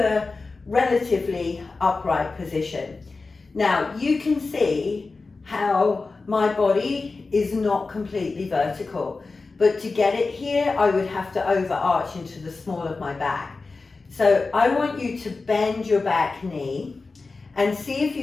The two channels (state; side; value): quieter; right; 3.9 dB